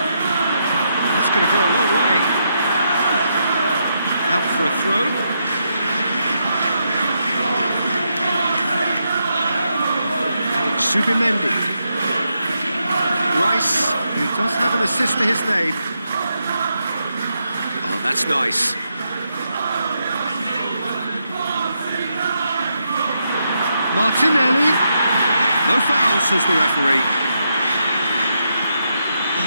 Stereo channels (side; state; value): both; inverted; correlation -0.82